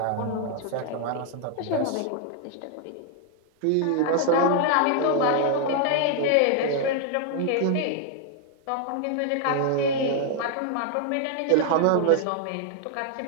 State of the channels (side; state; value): both; different; correlation 0.00